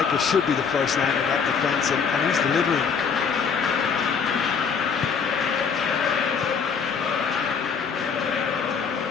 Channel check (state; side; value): quieter; right; 6.2 dB